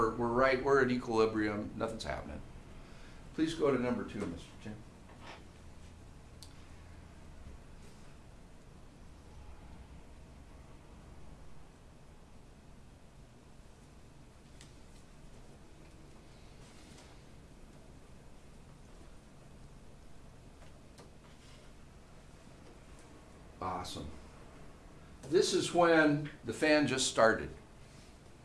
at equilibrium. Nothing's happening. Please go to number 2, Mr. Jim. Awesome. This is when the fan just started.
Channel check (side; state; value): both; identical; correlation 1.00